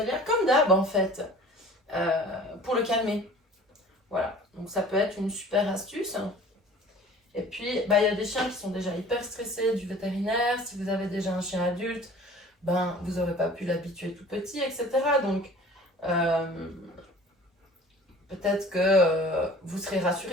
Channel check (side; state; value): both; normal; correlation 0.46